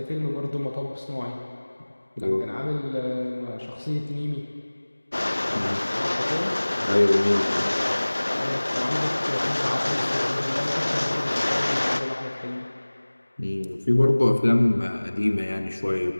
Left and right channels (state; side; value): inverted; both; correlation -1.00